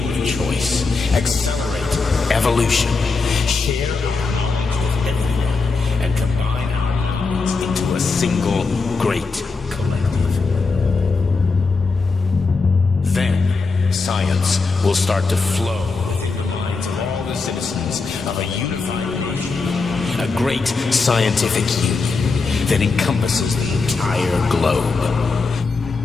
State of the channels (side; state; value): right; quieter; 4.2 dB